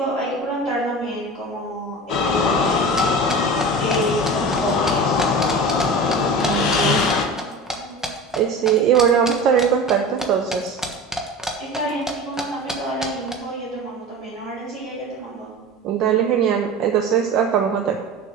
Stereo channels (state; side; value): normal; both; correlation 0.33